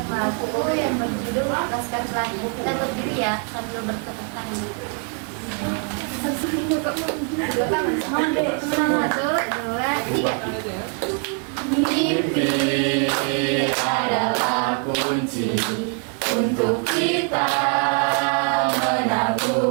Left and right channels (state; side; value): quieter; left; 39.1 dB